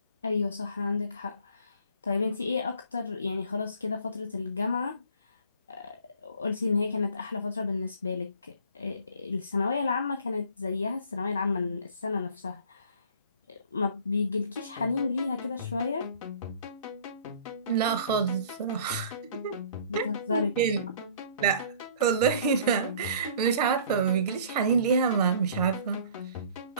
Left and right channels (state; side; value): inverted; both; correlation -0.51